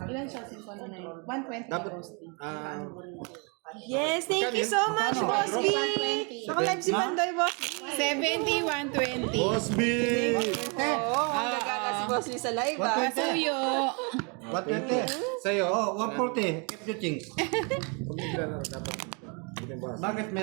Ilan siya? 120 Dapat... Boss D. Yes, thank you so much, Boss B. Naka-live si Pandoy, Boss B. 70, 120. Boss B! Oo, ang gagana si Boss B sa live, ah. Pasuyo. What 20? Sa'yo? Oh, 140. Keep your things. Bakit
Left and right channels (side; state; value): left; quieter; 34.3 dB